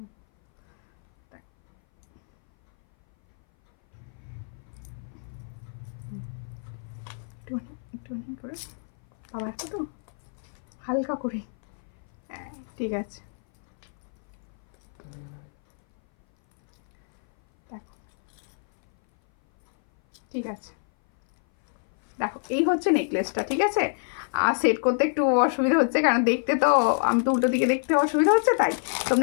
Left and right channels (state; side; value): silent; right; 58 dB below the other